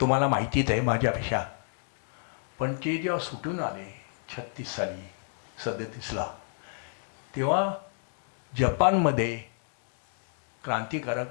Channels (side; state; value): right; silent; digital silence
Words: तुम्हाला माहितीच आहे माझ्यापेक्षा. पण ते जेव्हा सुटून आले 36 साली 37ला, तेव्हा जपानमध्ये